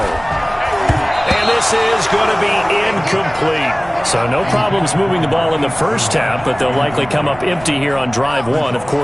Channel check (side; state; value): right; noise; rumble, 19 dB below the sound